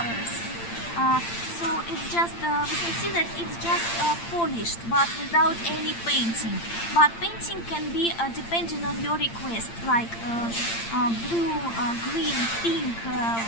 So it's just, we can see that it's just polished, but without any painting. But painting can be depending on your request, like blue, green, pink,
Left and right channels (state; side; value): late; right; 8.8 ms